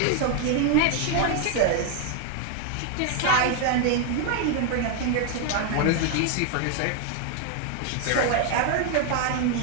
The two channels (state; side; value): different; both; correlation 0.01